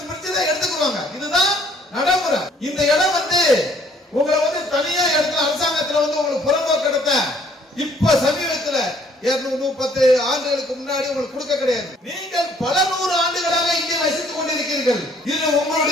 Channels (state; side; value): normal; both; correlation 0.62